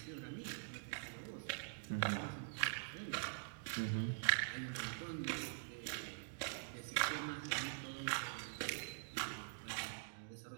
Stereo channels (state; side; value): silent; left; digital silence